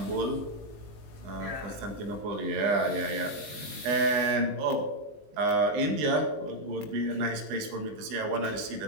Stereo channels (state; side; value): late; left; 19 ms